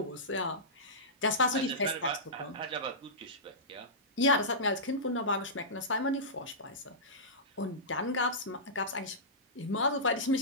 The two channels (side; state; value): both; normal; correlation -0.17